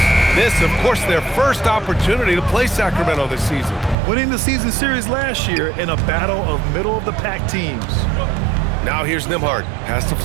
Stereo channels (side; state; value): left; drops out; at 4.0 s